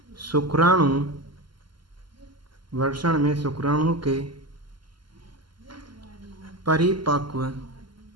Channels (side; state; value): left; late; 0.72 ms